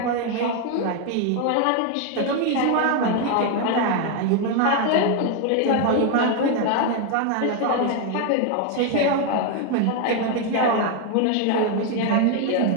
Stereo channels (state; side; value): different; both; correlation 0.01